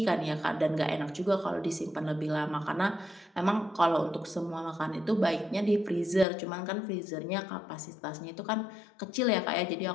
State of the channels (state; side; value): drops out; right; at 6.2 s